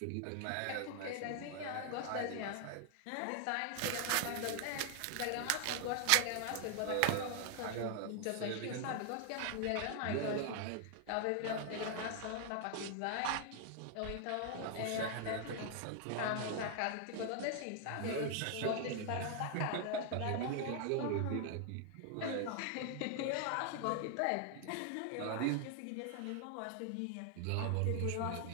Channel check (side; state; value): both; different; correlation 0.00